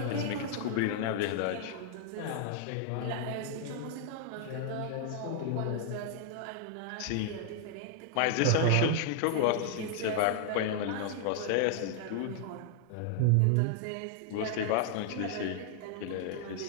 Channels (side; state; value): both; different; correlation 0.00